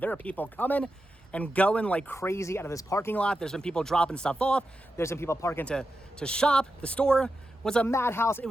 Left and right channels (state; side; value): normal; both; correlation 0.89